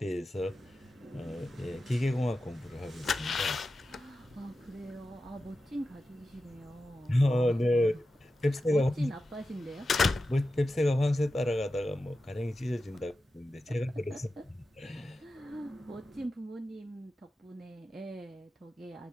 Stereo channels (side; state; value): both; normal; correlation 0.92